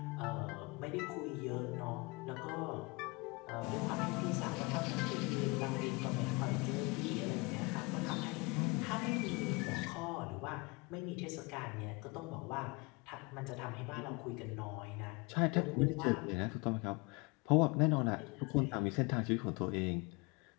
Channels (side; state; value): right; quieter; 27.3 dB